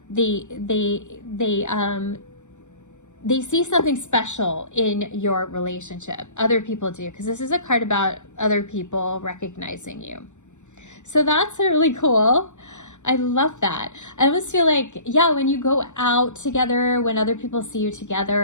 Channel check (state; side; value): late; right; 0.84 ms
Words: They see something special in your relationship. Other people do, because this is a card about other people recognizing you. So that's really cool. I love that. I almost feel like, yeah, when you go out together, when other people see you